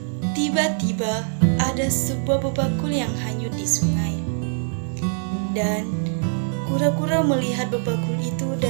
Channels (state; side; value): silent; left; digital silence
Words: Tiba-tiba ada sebuah bebakul yang hanyut di sungai. Dan kura-kura melihat bebakul itu